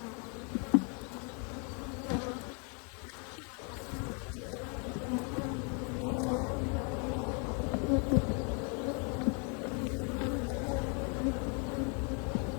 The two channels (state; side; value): quieter; right; 36.5 dB